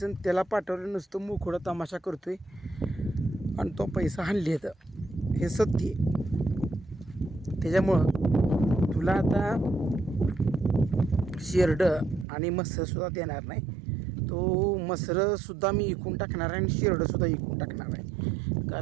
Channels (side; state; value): left; drops out; at 12.2 s